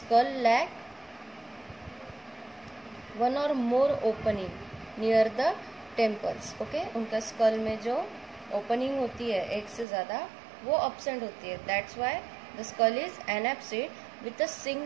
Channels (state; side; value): drops out; left; at 9.9 s